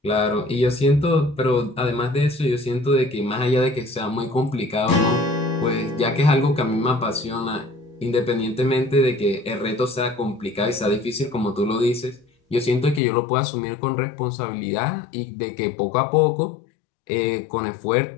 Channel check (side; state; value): right; drops out; at 13.0 s